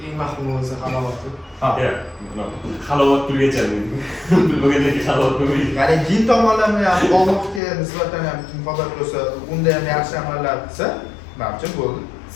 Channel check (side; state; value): right; drops out; at 7.6 s